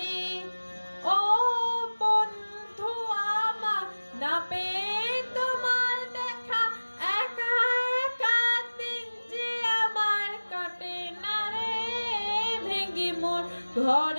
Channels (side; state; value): both; inverted; correlation -1.00